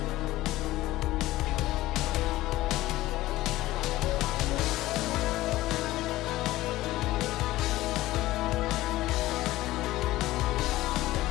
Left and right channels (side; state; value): right; quieter; 16.9 dB